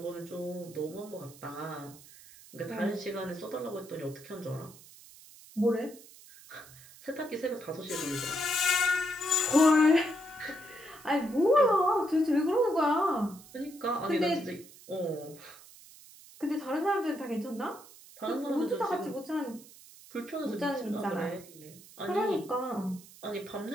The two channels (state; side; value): noise; right; hiss, 21 dB below the sound